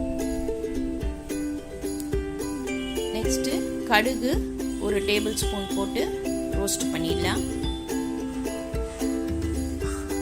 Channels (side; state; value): both; identical; correlation 1.00